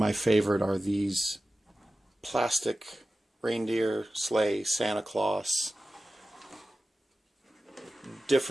favorite are these plastic reindeer, sleigh, Santa Claus,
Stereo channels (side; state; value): both; normal; correlation 0.94